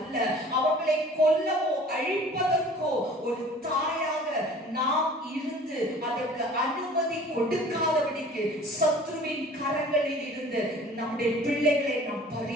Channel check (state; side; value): normal; both; correlation 0.47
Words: அவர்களை கொல்லவோ அழிப்பதற்கோ ஒரு தாயாக நாம் இருந்து அதற்கு அனுமதி கொடுக்காதபடிக்கு சத்ருவின் கரங்களில் இருந்து நம்முடைய பிள்ளைகளை நாம்